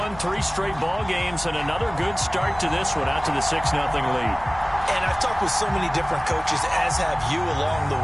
3 straight ball games and another good start to this one out to the 6-0 lead. And I've talked with so many different coaches, as have you along the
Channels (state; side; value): noise; left; rumble, 17 dB below the sound